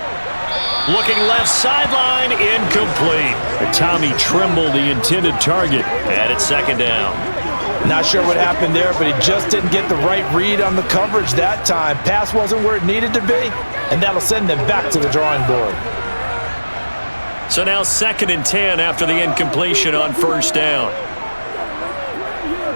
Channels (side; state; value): both; inverted; correlation -1.00